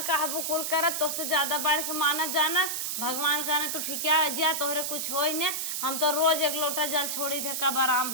कहबू कुल करत तो से ज्यादा बढ़ के मानत जाना भगवान कहना तू ठिकिया जा तोहरे कुछ होई ने हम तो रोज एक लोटा जल छोड़ी थे कब आराम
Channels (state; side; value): noise; right; hiss, 2 dB below the sound